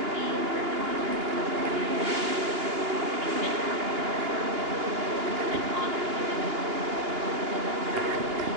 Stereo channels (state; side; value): late; left; 2.9 ms